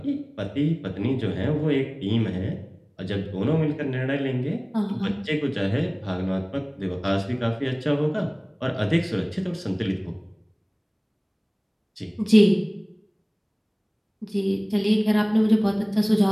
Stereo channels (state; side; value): identical; both; correlation 1.00